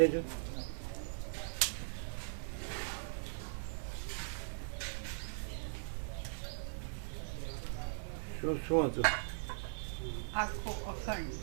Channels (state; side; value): silent; left; 51 dB below the other